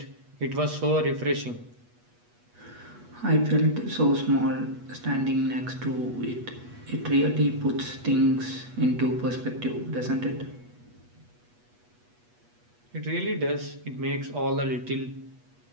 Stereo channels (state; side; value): late; left; 8.3 ms